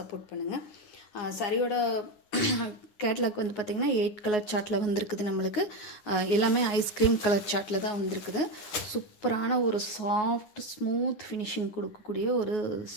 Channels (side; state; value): right; late; 9.6 ms